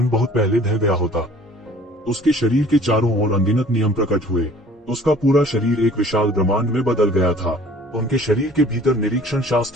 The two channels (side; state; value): both; normal; correlation 0.51